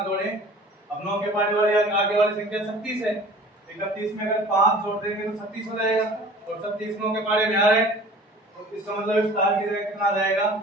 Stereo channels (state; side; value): normal; both; correlation 0.45